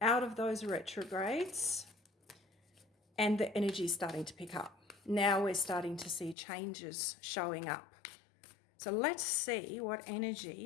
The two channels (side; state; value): right; drops out; at 6.4 s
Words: out of those retrogrades and the energy is starting to pick up. Now we're starting to see changes showing up. So let's see what